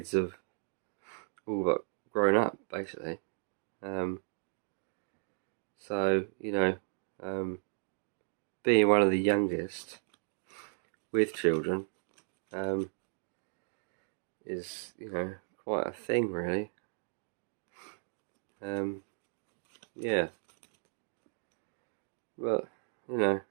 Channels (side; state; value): left; silent; digital silence